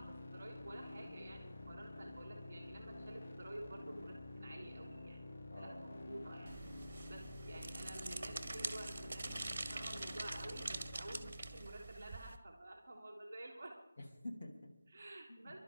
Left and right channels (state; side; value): inverted; both; correlation -0.93